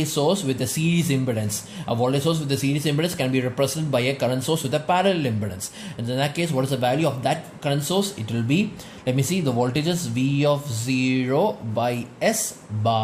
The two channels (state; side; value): identical; both; correlation 1.00